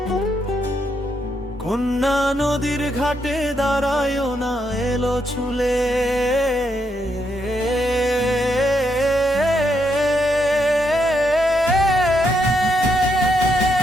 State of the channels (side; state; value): both; normal; correlation 0.78